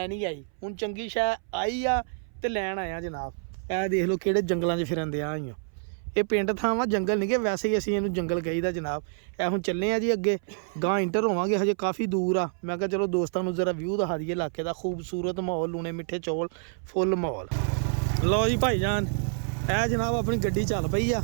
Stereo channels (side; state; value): left; silent; 58 dB below the other